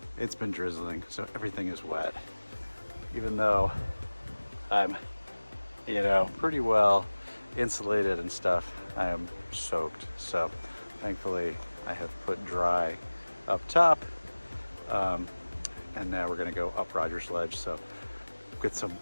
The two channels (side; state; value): both; inverted; correlation -1.00